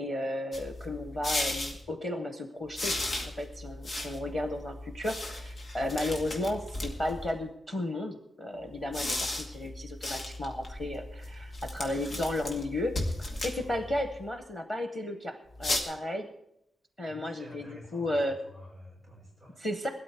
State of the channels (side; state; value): both; normal; correlation 0.85